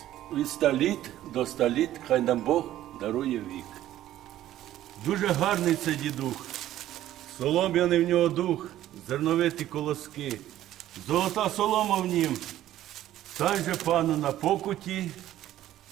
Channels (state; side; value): quieter; left; 13.3 dB